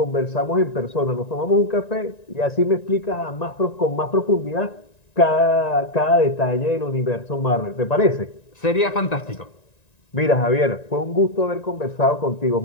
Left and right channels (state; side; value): late; right; 1.9 ms